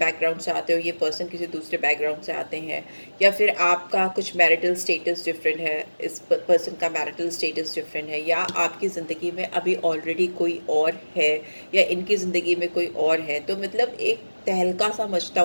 से आते हो, ये पर्सन किसी दूसरे बैकग्राउंड से आते हैं, या फिर आपका कुछ मैरिटल स्टेटस डिफरेंट है, इस पर्सन का मैरिटल स्टेटस डिफरेंट है, या आपकी ज़िंदगी में अभी ऑलरेडी कोई और है, या इनकी ज़िंदगी में कोई और है, तो मतलब एक तहलका सा मचता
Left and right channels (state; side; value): inverted; both; correlation -1.00